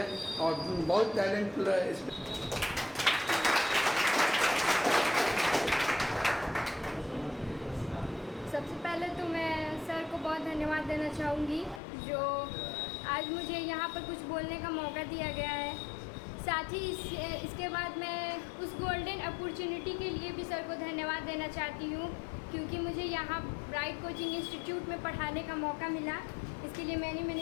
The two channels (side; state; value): right; drops out; at 11.8 s